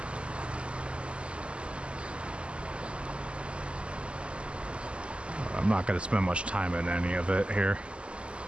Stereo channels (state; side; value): late; left; 0.054 ms